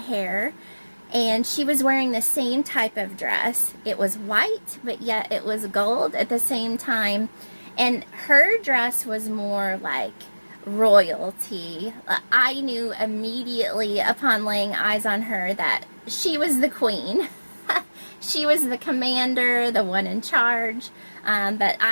And she was wearing the same type of dress. It was white, but yet it was gold at the same time. And her dress was more like royalty. I knew immediately upon laying eyes on her that she was the queen. She was the commander, the one in charge. But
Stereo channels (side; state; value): both; inverted; correlation -1.00